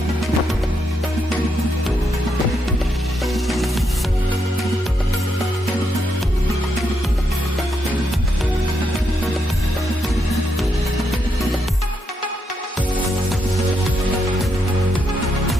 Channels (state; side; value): normal; both; correlation 0.80